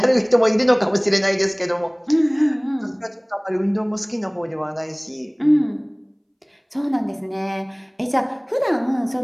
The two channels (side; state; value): both; identical; correlation 1.00